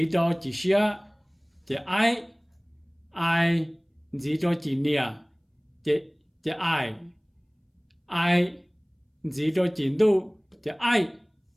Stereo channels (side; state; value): both; identical; correlation 1.00